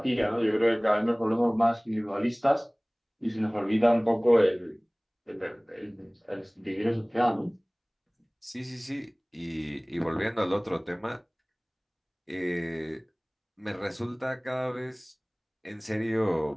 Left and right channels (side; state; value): both; identical; correlation 1.00